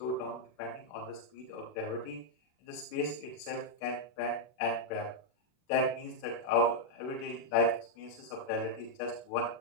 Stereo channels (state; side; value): late; right; 40 ms